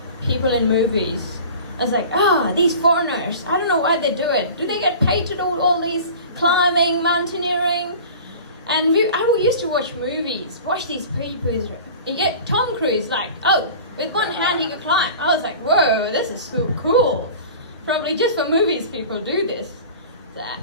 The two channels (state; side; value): inverted; both; correlation -0.39